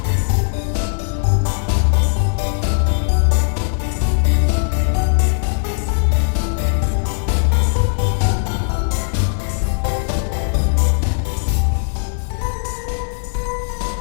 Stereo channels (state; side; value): silent; right; digital silence